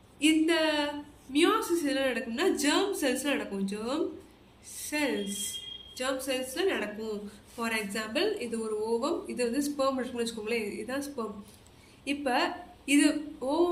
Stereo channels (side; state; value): both; identical; correlation 1.00